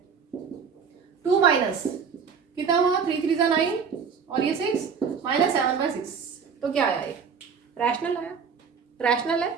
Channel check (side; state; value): left; quieter; 6.2 dB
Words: 2 माइनस कितना हुआ, 3 3 9 और ये 6 -7/6, तो क्या आया, ये रैशनल आया, रैशनल है।